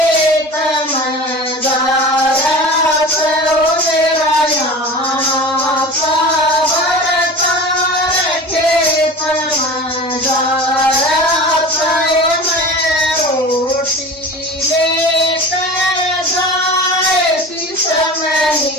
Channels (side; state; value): both; normal; correlation 0.35